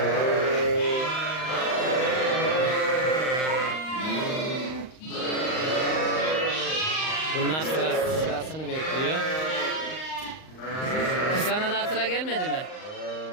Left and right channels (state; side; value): late; right; 38 ms